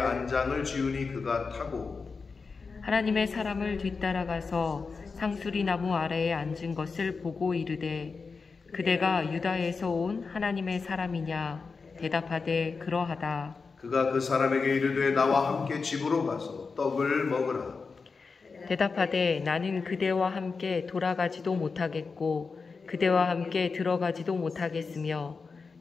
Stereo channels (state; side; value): quieter; right; 4.7 dB